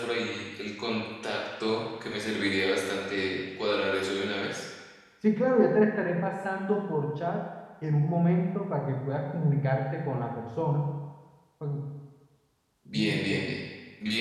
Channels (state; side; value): identical; both; correlation 1.00